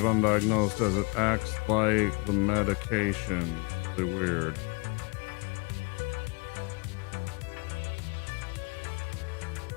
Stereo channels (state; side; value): quieter; right; 30.8 dB